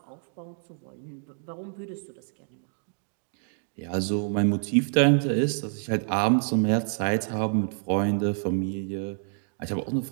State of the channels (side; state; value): left; silent; 60 dB below the other